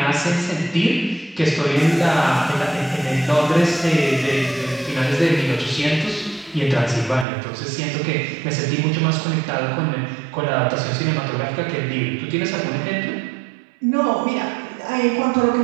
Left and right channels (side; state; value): left; drops out; at 7.2 s